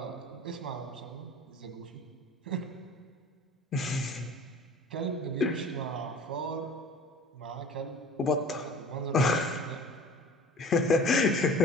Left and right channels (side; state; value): both; normal; correlation 0.44